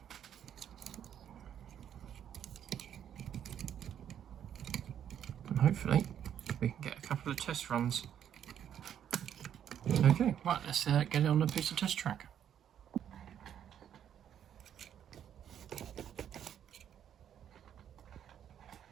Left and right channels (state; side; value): quieter; left; 9.5 dB